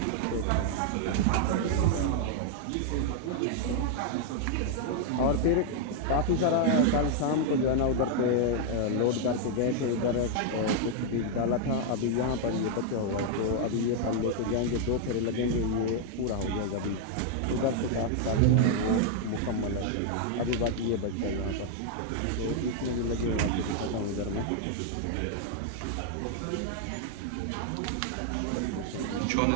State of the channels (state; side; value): different; both; correlation 0.00